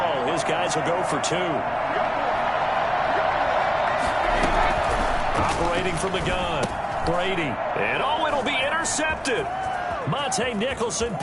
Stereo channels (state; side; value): identical; both; correlation 1.00